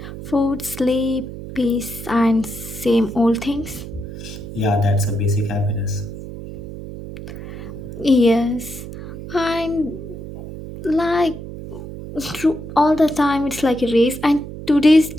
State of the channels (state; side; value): noise; right; hum, 11 dB below the sound